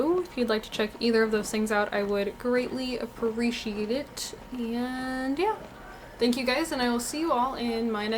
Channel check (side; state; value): both; identical; correlation 1.00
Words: If you'd like to check either of those things out, I would greatly appreciate it. And yeah, thank you guys, and I will see you all in my